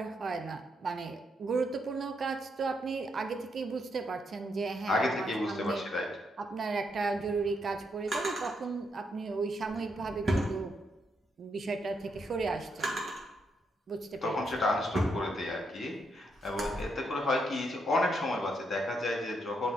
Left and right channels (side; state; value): both; normal; correlation 0.78